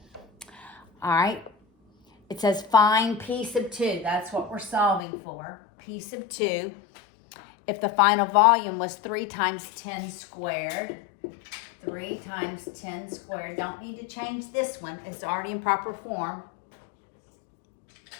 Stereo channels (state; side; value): drops out; right; at 5.0 s